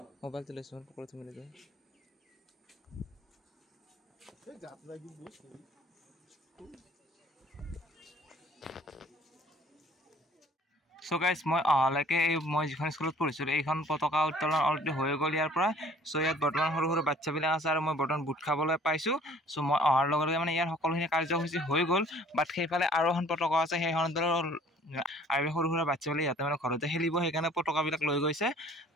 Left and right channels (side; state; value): both; normal; correlation 0.54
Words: মোবাইল চলাইছো পকৰা তুমি লৈ So guys, মই অহালৈকে মই যিখন স্কুলত পঢ়িছিলো এইখন পতাকা উত্তোলন অলৰেডি হৈ গ'ল ইয়াৰ পৰা। সো ইয়াত বৰ্তমান সৰু সৰু বাচ্চাবিলাক আছে আৰু মই বৰ্তমান বুট খাবলৈ পাইছোঁ। সো মই অহাৰ লগে লগে মানে ইয়াৰ সকলোখিনি কাৰ্যসূচী হৈ গ'ল। বাট সেইফালে আৰু এখন পতাকা আছে, সেইখন আৰু সৰু সৰু বাচ্চাবিলাক ইয়াতে মানে ঘৰতে খেলিব, সেইকাৰণে পতাকাবিলাক লৈ গৈছে।